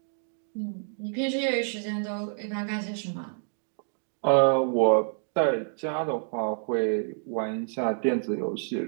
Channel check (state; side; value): silent; left; digital silence